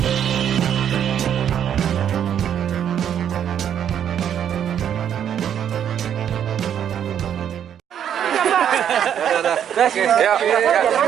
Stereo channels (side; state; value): left; quieter; 9.3 dB